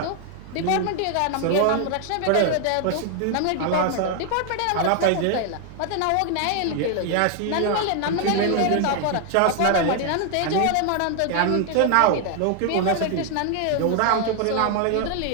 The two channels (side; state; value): both; different; correlation 0.00